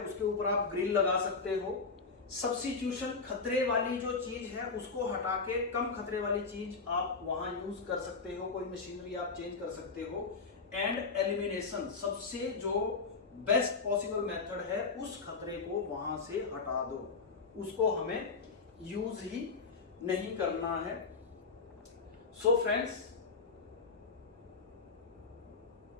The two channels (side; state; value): right; quieter; 4.5 dB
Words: ऊपर आप ग्रिल लगा सकते हो। सब्स्टिट्यूशन, खतरे वाली जो चीज है उसको हटा के कम खतरे वाली चीज आप वहां यूज कर सकते हो, कोई मशीनरी आप चेंज कर सकते हो। एंड एलिमिनेशन, सबसे जो बेस्ट पॉसिबल मेथड है उस खतरे को वहां से हटा दो, उसको हमें यूज ही नहीं करना है। सो फ्रेंड्स,